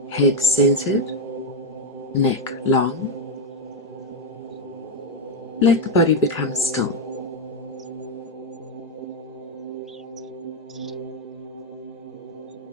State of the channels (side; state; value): both; normal; correlation 0.05